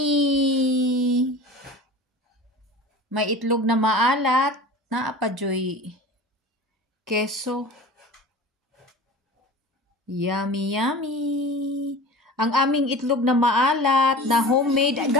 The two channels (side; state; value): both; normal; correlation 0.37